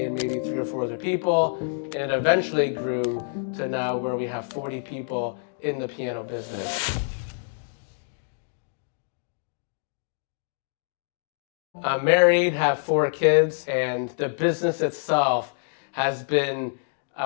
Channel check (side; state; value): right; silent; digital silence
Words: maybe 3 or 4 other people, and it eventually grew to now where we have 40 people in the piano business. I'm married, have 4 kids, and the business itself has been,